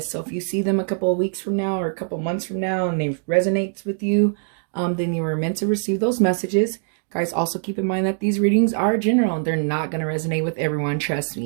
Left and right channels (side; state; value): left; silent; 63 dB below the other